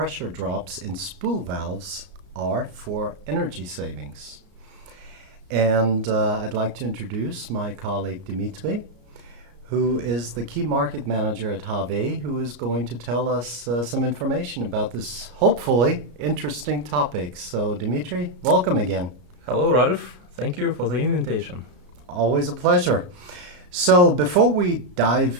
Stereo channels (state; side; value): late; left; 34 ms